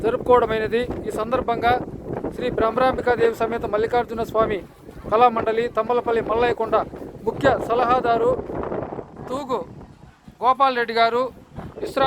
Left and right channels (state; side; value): identical; both; correlation 1.00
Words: జరుపుకోవడమైనది. ఈ సందర్భంగా శ్రీ బ్రహ్మరాంబికాదేవి సమేత మల్లికార్జున స్వామి కళామండలి తంబళ్లపల్లి మల్లయ్యకొండ ముఖ్య సలహాదారు తూగు గోపాల్ రెడ్డి గారు,